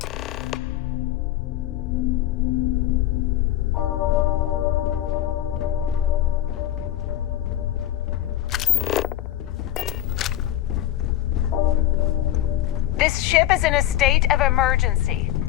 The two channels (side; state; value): right; quieter; 12.9 dB